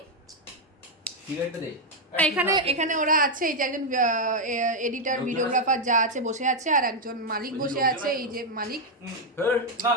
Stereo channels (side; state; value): both; normal; correlation 0.00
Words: এখানে এখানে ওরা আছে, এই যে একজন এডিটার, ভিডিওগ্রাফার যা আছে বসে আছে, আর একজন মালিক বসে আছে, এই যে মালিক।